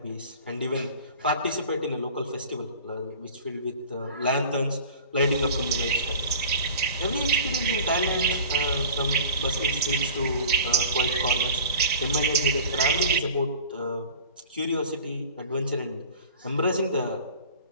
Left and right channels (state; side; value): inverted; both; correlation -0.42